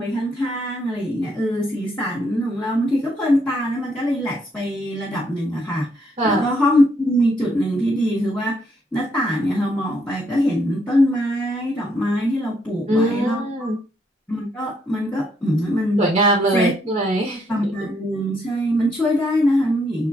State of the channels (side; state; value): both; normal; correlation 0.74